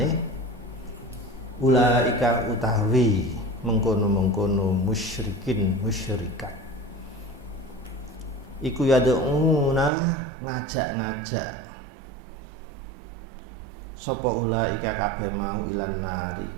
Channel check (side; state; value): left; drops out; at 9.9 s